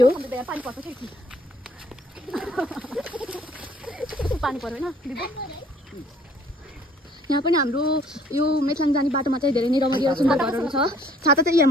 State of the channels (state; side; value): normal; both; correlation 0.59